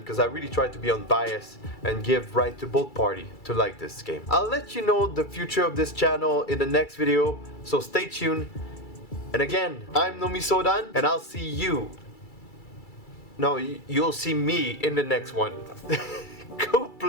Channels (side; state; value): right; late; 2.3 ms